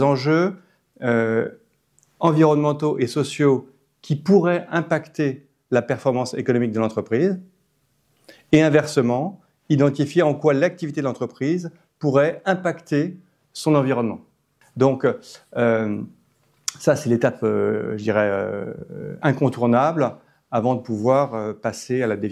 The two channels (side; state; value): both; identical; correlation 1.00